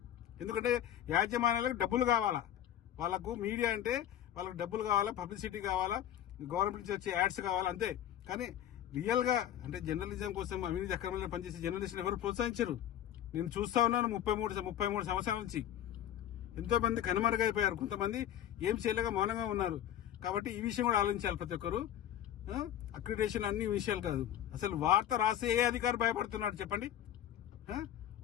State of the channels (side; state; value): right; quieter; 11.1 dB